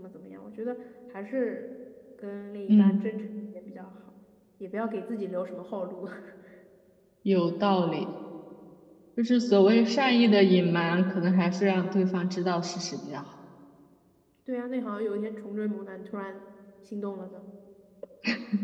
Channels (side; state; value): both; identical; correlation 1.00